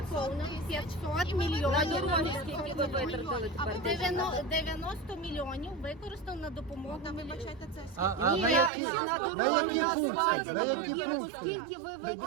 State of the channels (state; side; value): drops out; left; at 8.7 s